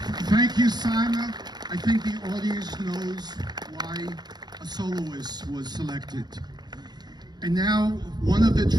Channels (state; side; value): late; left; 0.20 ms